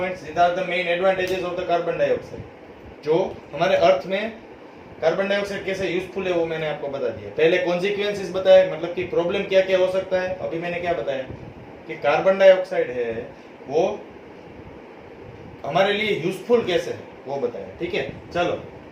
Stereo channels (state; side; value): identical; both; correlation 1.00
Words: These are the main advantages of the carbon dioxide. जो हमारे अर्थ में कार्बन डाइऑक्साइड कैसे यूजफुल है वो मैंने आपको बता दिया। पहले कॉन्सिक्वेंसेस बताए, मतलब कि प्रॉब्लम क्या क्या हो सकता है। अभी मैंने क्या बताया कि कार्बन डाइऑक्साइड है वो हमारे लिए यूजफुल कैसे है वो बताया। ठीक है, चलो